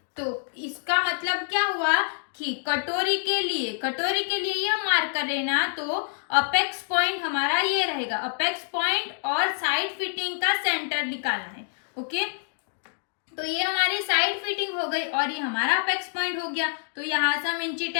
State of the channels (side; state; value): right; silent; digital silence